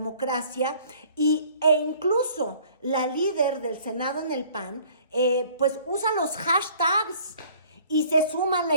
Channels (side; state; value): both; inverted; correlation -0.54